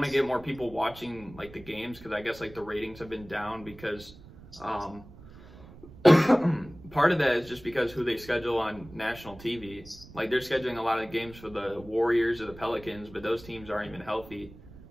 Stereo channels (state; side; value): noise; right; rumble, 19 dB below the sound